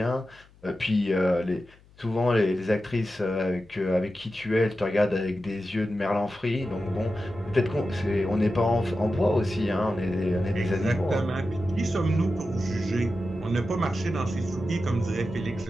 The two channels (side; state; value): left; noise; hum, 27 dB below the sound